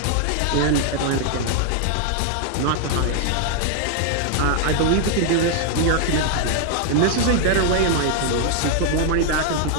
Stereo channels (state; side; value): different; both; correlation 0.00